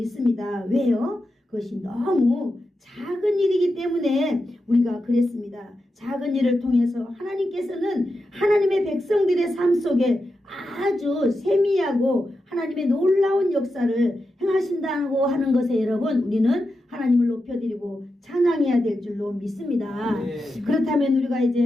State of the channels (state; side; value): normal; both; correlation 0.89